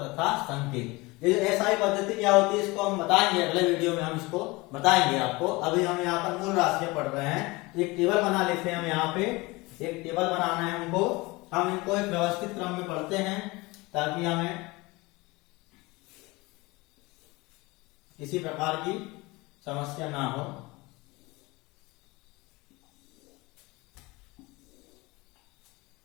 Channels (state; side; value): quieter; right; 23.3 dB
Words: संकेत। ये जो SI पद्धति क्या होती है इसको हम बताएंगे अगले वीडियो में, हम इसको बताएंगे आपको। अभी हम यहाँ पर मूल राशियां पढ़ रहे हैं। तो एक टेबल बना लेते हैं हम। यहाँ पे एक टेबल बनाना है हमको। हम इनको एक व्यवस्थित क्रम में पढ़ते हैं ताकि हमें किसी प्रकार की समस्या ना हो।